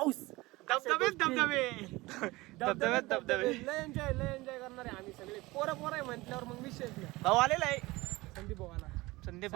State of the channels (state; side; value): quieter; left; 20.9 dB